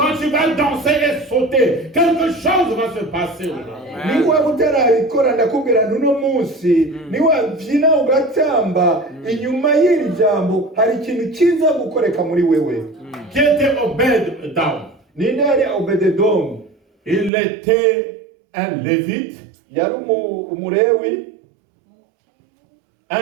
tu vas danser et sauter, quelque chose va se passer aujourd'hui. Niba utarabikora ndakubwira n'uno munsi, niwabyina ugatamba inyuma y'iri jambo hari ikintu kiza gukoreka muri wewe. Qui était Obed-Edom? Ninde yari Obededomu? Il était un lévite, Yari umulewi,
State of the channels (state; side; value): drops out; left; at 17.3 s